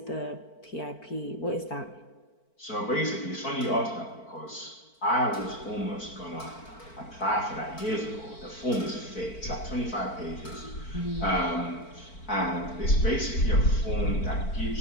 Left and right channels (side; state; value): right; late; 4.5 ms